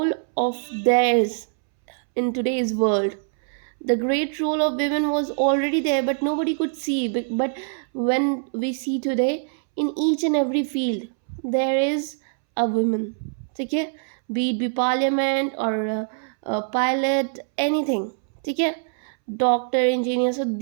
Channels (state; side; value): silent; left; 63 dB below the other